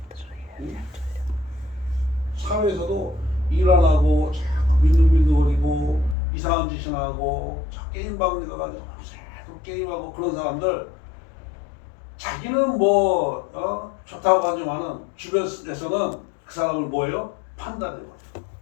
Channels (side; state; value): right; drops out; at 6.2 s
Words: 사회에서도 일 안 하고 자꾸 민둥민둥거리고 이상한 짓이나 하고 게임방에 가가지고 또 게임하고 그런 사람들 자기는 좋다고 하지만은 주변에서는 그 사람을 뭐예요? 판단해요.